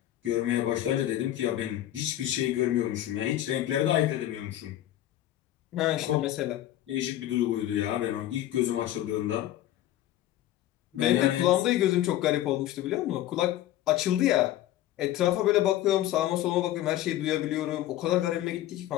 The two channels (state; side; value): quieter; right; 13.5 dB